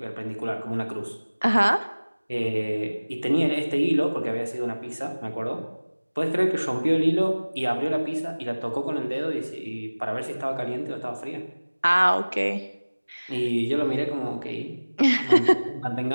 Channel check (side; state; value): both; inverted; correlation -1.00